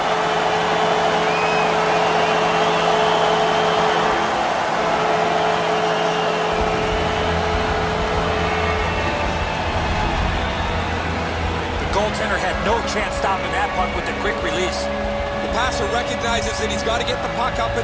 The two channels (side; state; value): both; identical; correlation 1.00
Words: Goaltender had no chance stopping that puck with the quick release. The passer recognizes that he's got to get the puck up